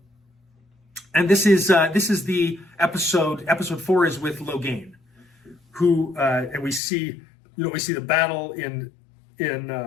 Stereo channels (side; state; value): right; drops out; at 6.8 s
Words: this is the episode 4 is with Logain, who and we see the battle in